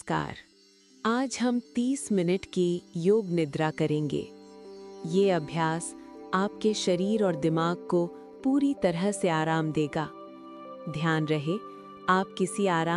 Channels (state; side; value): identical; both; correlation 1.00